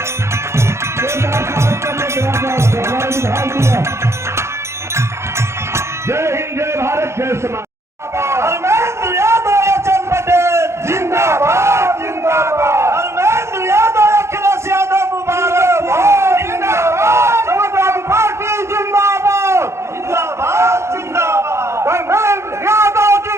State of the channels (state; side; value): late; left; 0.13 ms